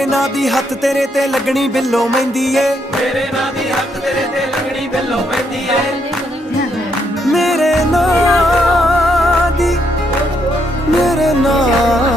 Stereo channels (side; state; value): both; normal; correlation 0.75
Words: ना दी हथ तेरे ते लगनी बिल्लो मेहंदी ए मेरे ना दी हक तेरे ते लगनी बिल्लो पैंदी है मेरे ना दी